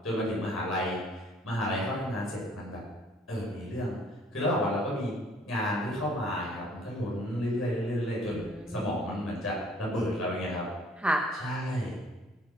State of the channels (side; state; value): both; normal; correlation 0.58